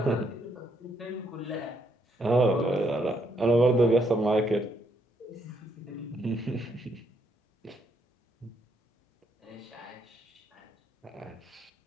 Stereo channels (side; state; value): both; normal; correlation 0.74